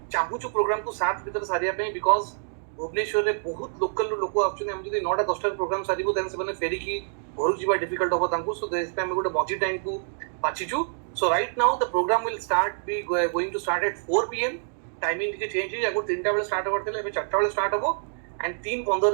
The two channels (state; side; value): silent; left; digital silence